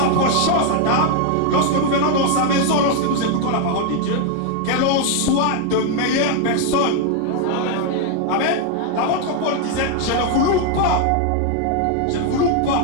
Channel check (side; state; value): both; different; correlation 0.01